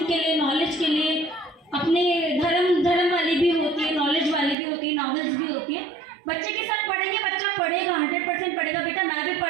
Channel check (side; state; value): left; drops out; at 4.5 s